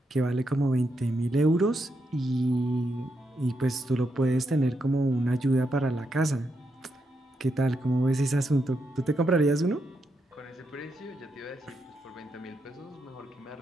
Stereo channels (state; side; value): normal; both; correlation 0.82